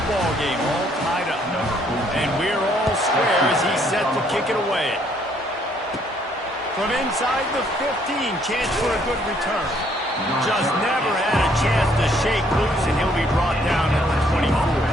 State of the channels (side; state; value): both; normal; correlation 0.66